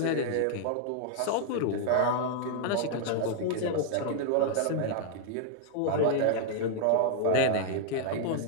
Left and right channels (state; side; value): different; both; correlation -0.01